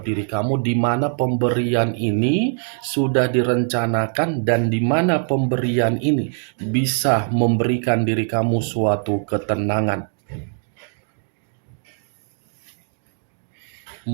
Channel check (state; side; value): silent; left; 64 dB below the other